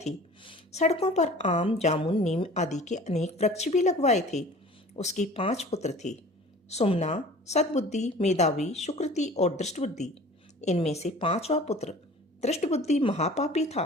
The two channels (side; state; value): both; normal; correlation 0.44